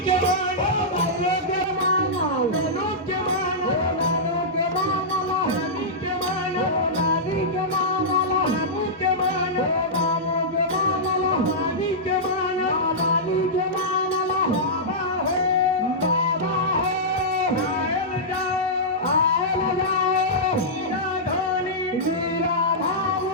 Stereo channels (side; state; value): both; normal; correlation -0.13